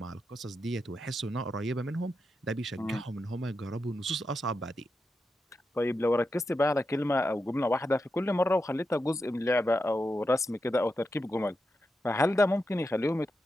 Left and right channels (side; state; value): both; normal; correlation 0.87